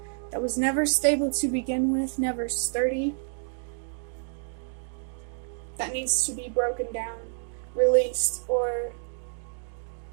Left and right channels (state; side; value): silent; left; digital silence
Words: that was never stable to begin with, never sturdy, that needs to be broken down, released, or